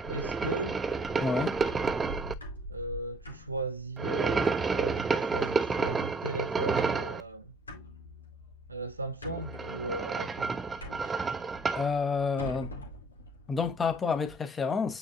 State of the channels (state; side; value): normal; both; correlation 0.60